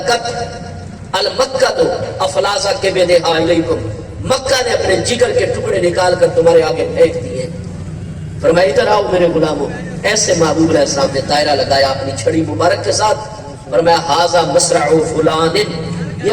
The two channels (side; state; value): both; identical; correlation 1.00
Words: المکۃ افلاذ کبدھا الیکم، مکہ نے اپنے جگر کے ٹکڑے نکال کر تمہارے آگے پھینک دیے۔ فرمایا ادھر آؤ میرے غلاموں۔ ایسے محبوب علیہ السلام نے دائرہ لگایا اپنی چھڑی مبارک کے ساتھ، فرمایا ھذا مصرع فلان، یہ